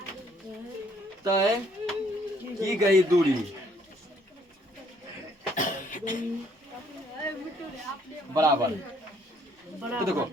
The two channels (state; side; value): normal; both; correlation 0.65